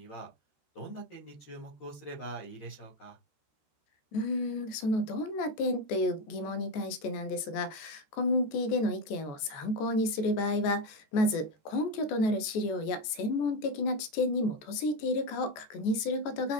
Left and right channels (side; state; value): right; late; 14 ms